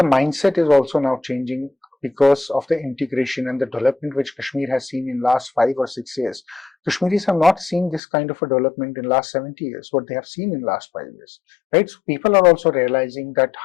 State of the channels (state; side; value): drops out; right; at 8.0 s